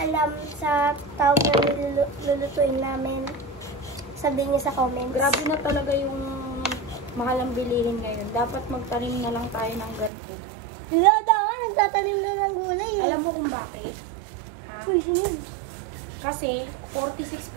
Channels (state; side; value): drops out; left; at 10.1 s